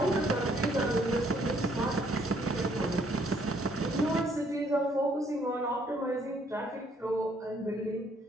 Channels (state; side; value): normal; both; correlation 0.66